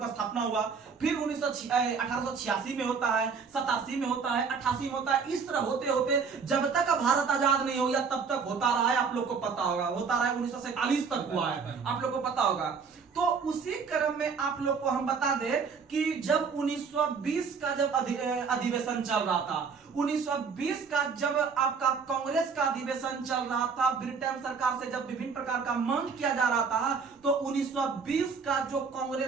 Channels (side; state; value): left; quieter; 5.6 dB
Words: स्थापना हुआ, फिर 1886 में होता है, 87 में होता है, 88 में होता है। इस तरह होते होते जब तक भारत आजाद नहीं हो गया तब तक होता रहा है, आप लोग को पता होगा, होता रहा है 1947 तक हुआ है, आप लोग को पता होगा। तो उसी क्रम में आप लोग को हम बता दें कि जब 1920 का जब अधिवेशन चल रहा था, 1920 का जब आपका कांग्रेस का अधिवेशन चल रहा था, ब्रिटेन सरकार से जब विभिन्न प्रकार का मांग किया जा रहा था, तो 1920 का जो